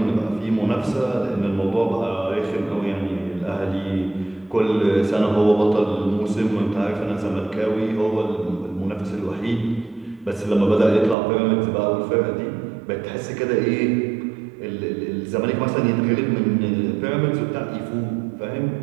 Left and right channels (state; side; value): drops out; left; at 11.2 s